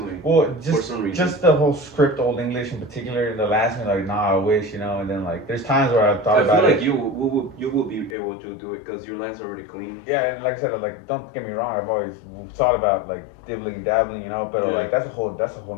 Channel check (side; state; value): right; drops out; at 8.2 s